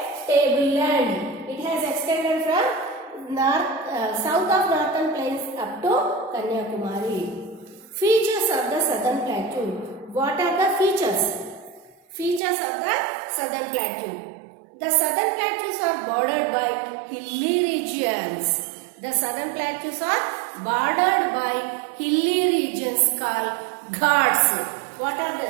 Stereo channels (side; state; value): left; drops out; at 12.4 s